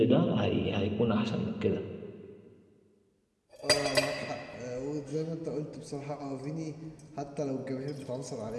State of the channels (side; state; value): both; identical; correlation 1.00